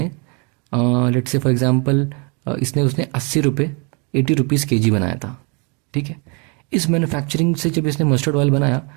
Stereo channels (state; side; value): quieter; left; 33.4 dB